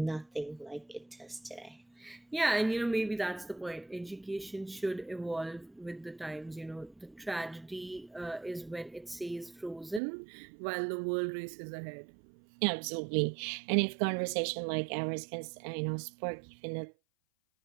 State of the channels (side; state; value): left; drops out; at 10.0 s